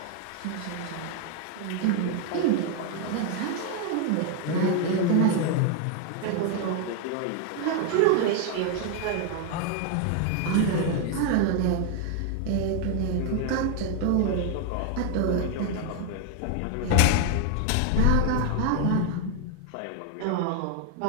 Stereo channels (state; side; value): different; both; correlation 0.00